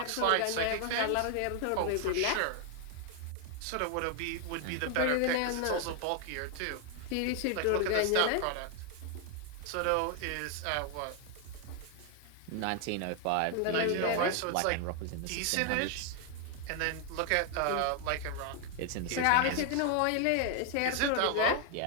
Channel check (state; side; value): different; both; correlation 0.00